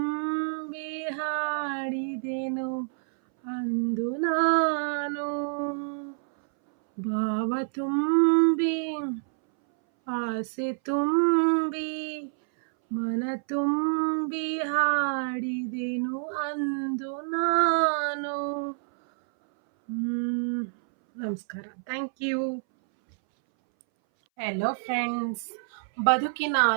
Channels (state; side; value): silent; left; 60 dB below the other